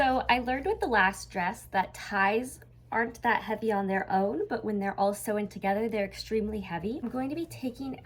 I learned with the last dress that ties aren't that heavy on their own, but when they're all sewn together, they're extremely heavy. I'm going to be taking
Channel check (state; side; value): identical; both; correlation 1.00